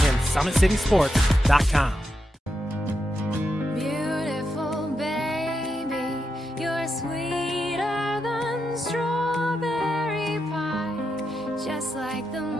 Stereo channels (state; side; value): normal; both; correlation 0.85